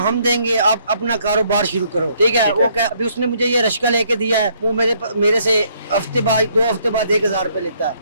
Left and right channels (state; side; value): inverted; both; correlation -0.68